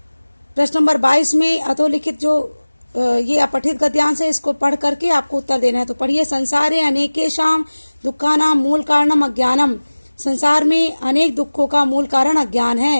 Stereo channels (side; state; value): both; inverted; correlation -1.00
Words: प्रश्न नंबर 22 में अधोलिखित जो ये अपठित गद्यांश है, इसको पढ़ करके आपको उत्तर देना है। तो पढ़िए, संसारे अनेकेषां दुःखानां मूल कारणम अज्ञानम, संसार में अनेक दुखों का मूल कारण अज्ञान